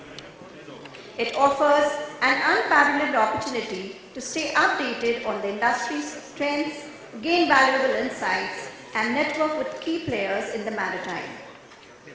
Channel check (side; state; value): both; identical; correlation 1.00